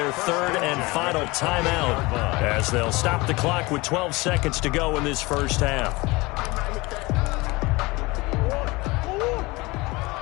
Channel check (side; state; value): right; quieter; 23.2 dB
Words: 3rd and final timeout as they'll stop the clock with 12 seconds to go in this first half.